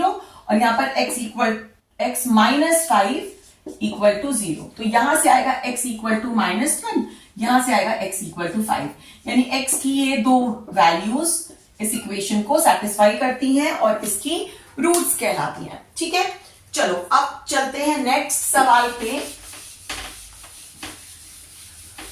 और यहां पर x माइनस 5 इक्वल टू 0। तो यहां से आएगा x इक्वल टू माइनस 1, यहां से आएगा x इक्वल टू 5, यानी x की ये दो वैल्यूज इस इक्वेशन को सेटिस्फाई करती हैं और इसकी रूट्स कहलाती हैं। ठीक है, चलो अब चलते हैं नेक्स्ट सवाल पे।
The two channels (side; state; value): both; identical; correlation 1.00